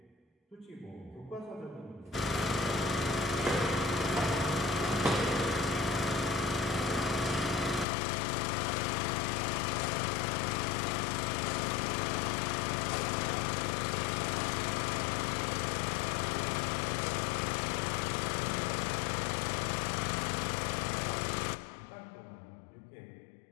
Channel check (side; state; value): right; drops out; at 7.9 s